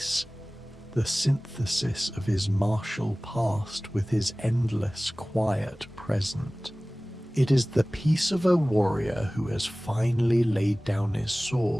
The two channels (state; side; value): normal; both; correlation 0.98